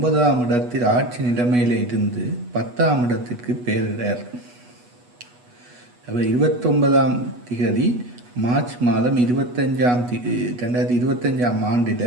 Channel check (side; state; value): left; late; 8.2 ms